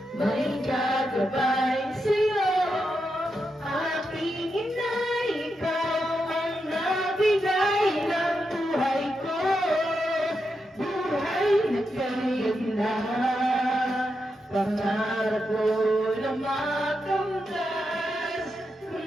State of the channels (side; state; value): both; normal; correlation 0.85